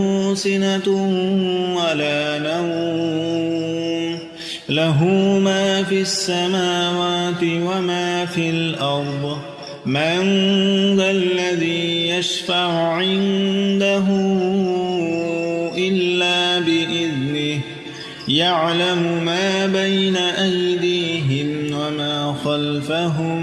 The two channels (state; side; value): identical; both; correlation 1.00